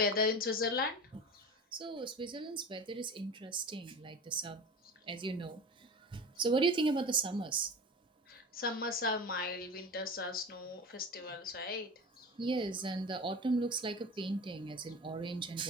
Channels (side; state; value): both; normal; correlation 0.32